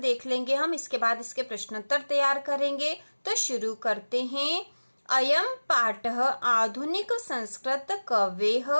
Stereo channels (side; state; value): both; inverted; correlation -1.00